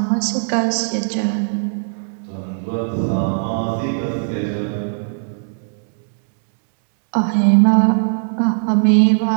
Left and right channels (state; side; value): silent; left; digital silence